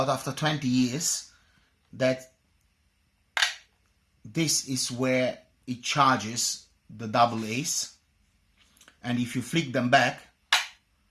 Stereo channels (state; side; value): identical; both; correlation 1.00